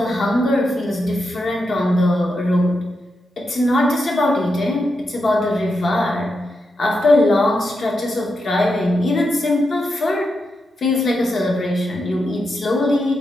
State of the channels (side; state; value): both; normal; correlation 0.86